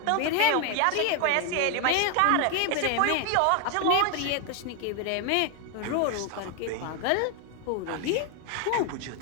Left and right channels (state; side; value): different; both; correlation 0.01